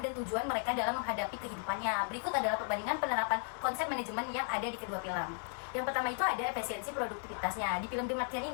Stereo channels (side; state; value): right; silent; 54 dB below the other